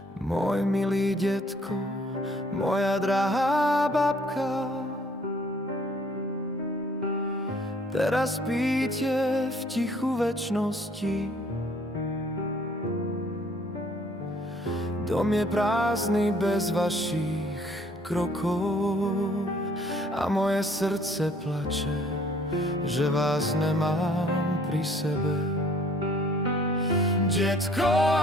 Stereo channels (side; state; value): both; normal; correlation 0.59